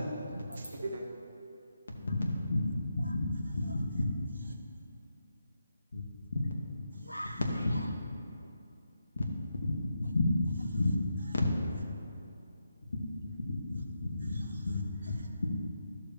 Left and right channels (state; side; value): inverted; both; correlation -0.85